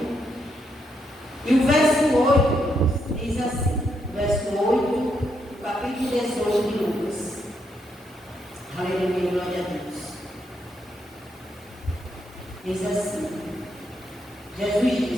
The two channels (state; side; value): normal; both; correlation 0.78